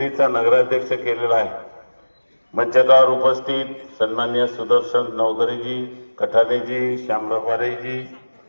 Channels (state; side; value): inverted; both; correlation -1.00